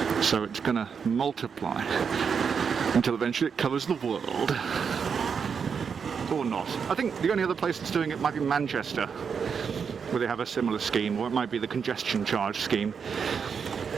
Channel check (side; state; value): left; quieter; 6.4 dB